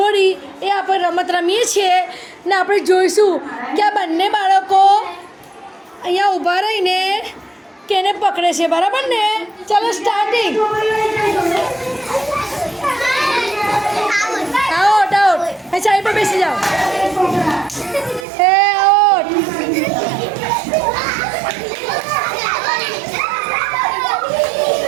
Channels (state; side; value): drops out; left; at 18.2 s